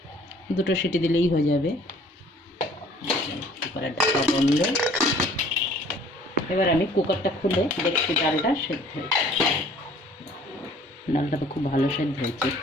2টো সিটি দিলেই হয়ে যাবে। কুকারের ঢাকা বন্ধ। এবার আমি কুকারটা খুলে দেখছি ডালটা সেদ্ধ হয়েছে। ডালটা তো খুব ভালো সেদ্ধ হয়েছে,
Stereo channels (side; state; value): both; normal; correlation 0.54